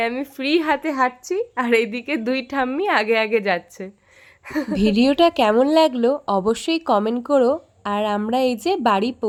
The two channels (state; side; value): identical; both; correlation 1.00